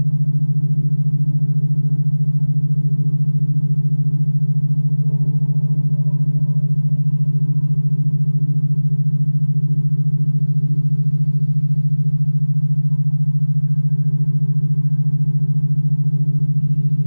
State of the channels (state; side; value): inverted; both; correlation -1.00